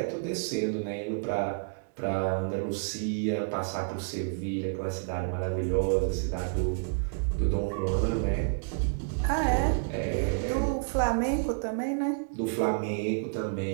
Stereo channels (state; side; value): silent; left; digital silence